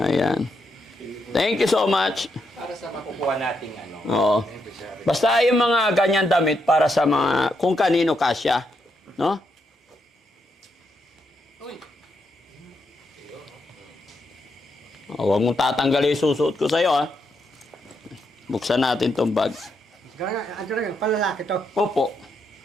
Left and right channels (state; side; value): normal; both; correlation 0.80